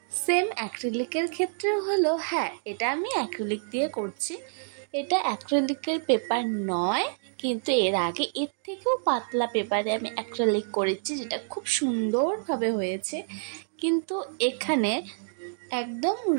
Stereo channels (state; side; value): silent; left; digital silence